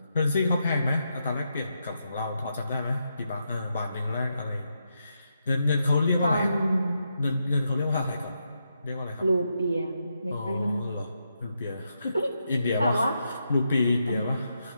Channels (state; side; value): inverted; both; correlation -0.83